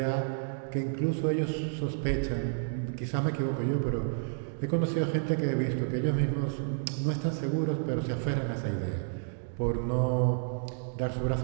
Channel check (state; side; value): silent; left; digital silence